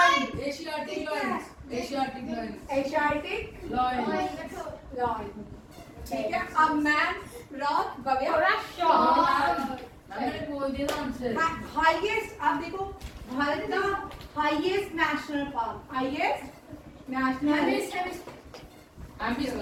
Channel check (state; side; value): identical; both; correlation 1.00